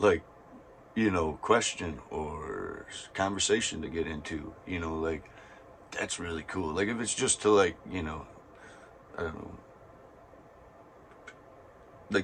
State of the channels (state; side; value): identical; both; correlation 1.00